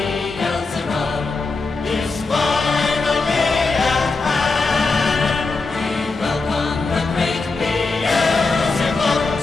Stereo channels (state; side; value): quieter; right; 3.9 dB